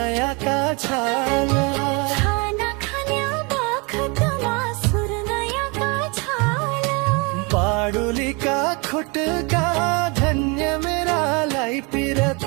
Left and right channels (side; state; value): left; quieter; 30.1 dB